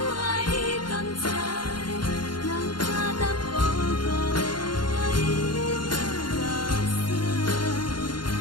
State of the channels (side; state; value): right; late; 0.71 ms